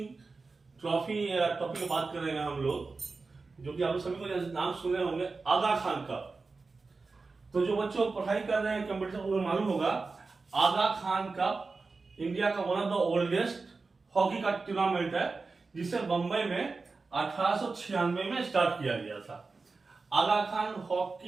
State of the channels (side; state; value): left; quieter; 4.1 dB